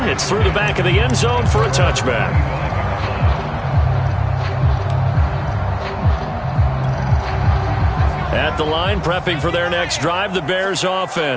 It's through the back of the end zone for a touchback. At the line, prepping for their next drive, the Bears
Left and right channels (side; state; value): both; identical; correlation 1.00